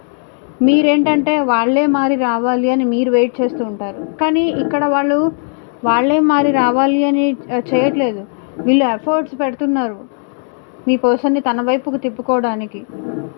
మీరేంటంటే వాళ్ళే మారి రావాలి అని మీరు వెయిట్ చేస్తూ ఉంటారు. కానీ ఇక్కడ వాళ్ళే మారి రావాలి అని చేయట్లేదు. వీళ్ళు ఎఫర్ట్స్ పెడుతున్నారు మీ పర్సన్ని తన వైపుకు తిప్పుకోవడానికి.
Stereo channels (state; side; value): silent; right; 60 dB below the other